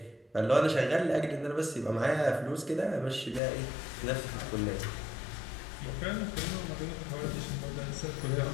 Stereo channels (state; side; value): drops out; right; at 3.4 s